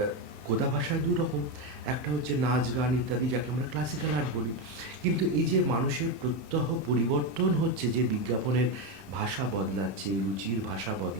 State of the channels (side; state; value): left; late; 31 ms